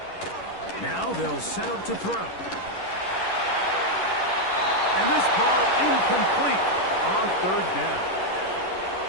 Now they'll set up to throw. And this ball incomplete on third down.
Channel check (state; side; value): late; right; 11 ms